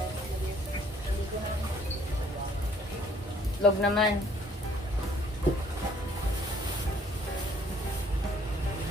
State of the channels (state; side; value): normal; both; correlation 0.61